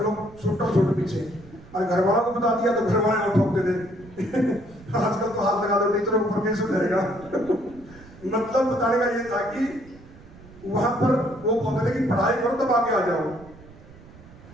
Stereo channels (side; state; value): right; noise; rumble, 21 dB below the sound